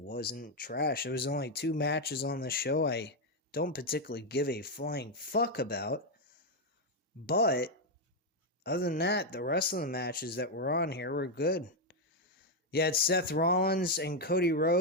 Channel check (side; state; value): both; normal; correlation 0.02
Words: trash. There was only 2 matches on the show I don't particularly give a flying fuck about. But other than that, the rest of the matches that were on here were good. You had Seth Rollins and Cody